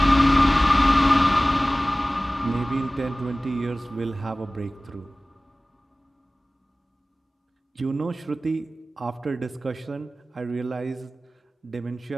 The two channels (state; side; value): normal; both; correlation 0.98